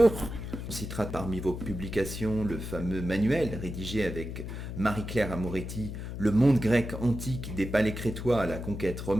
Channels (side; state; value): left; noise; hum, 7 dB below the sound